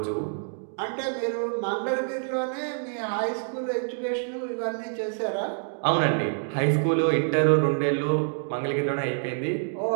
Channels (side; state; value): left; silent; digital silence